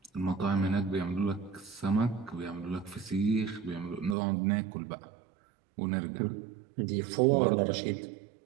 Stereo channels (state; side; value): drops out; left; at 4.2 s